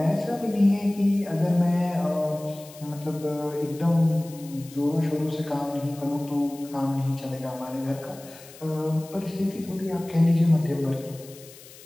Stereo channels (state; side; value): noise; left; hiss, 20 dB below the sound